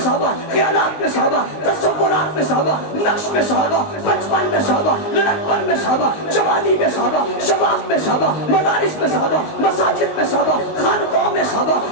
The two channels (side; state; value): right; late; 19 ms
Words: خیالات میں صحابہ، تصورات میں صحابہ، نقش میں صحابہ، بچپن میں صحابہ، لڑکپن میں صحابہ، جوانی میں صحابہ، شباب میں صحابہ، مدارس میں صحابہ، مساجد میں صحابہ، خانقاہوں میں صحابہ،